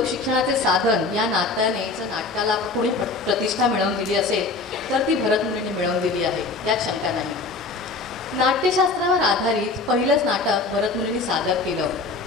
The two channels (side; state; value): right; quieter; 3.7 dB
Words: साधन या नात्याने जर नाटकाला कोणी प्रतिष्ठा मिळवून दिली असेल तर ती भरतमुनीने मिळवून दिली आहे, त्यात शंका नाही. नाट्यशास्त्रावर आधारित पहिलंच नाटक भरतमुनीने सादर केलं.